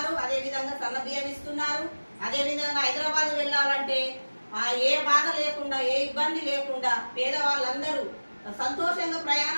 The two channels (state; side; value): inverted; both; correlation -1.00